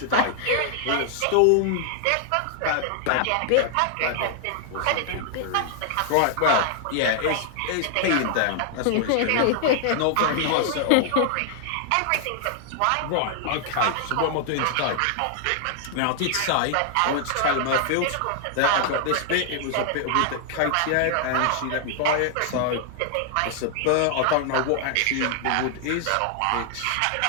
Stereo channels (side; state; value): both; different; correlation 0.00